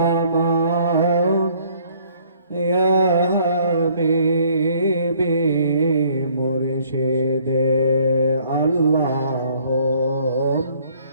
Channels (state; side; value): inverted; both; correlation -0.61